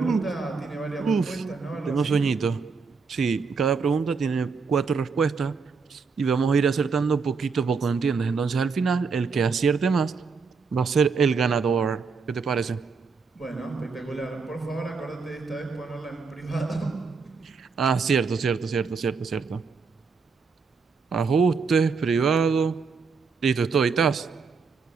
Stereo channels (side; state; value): left; quieter; 5.1 dB